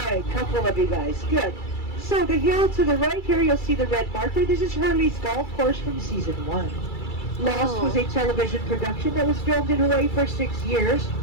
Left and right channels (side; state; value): right; late; 2.3 ms